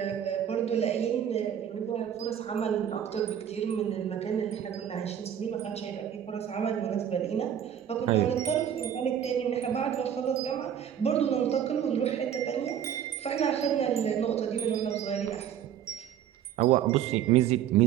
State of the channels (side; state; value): left; quieter; 9.6 dB